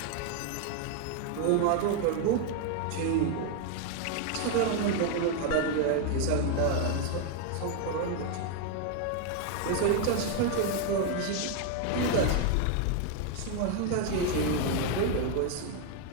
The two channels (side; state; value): both; different; correlation 0.01